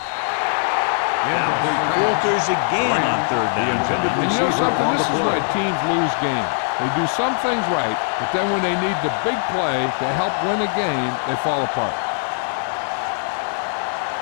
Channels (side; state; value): right; silent; digital silence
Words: Dallas falters again on third down, John. And you know something? This is why teams lose games. They do some things right, but then when they need the big play to help win a game, they fall apart.